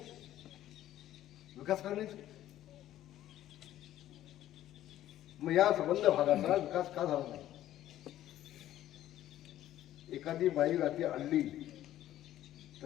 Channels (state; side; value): quieter; right; 13.1 dB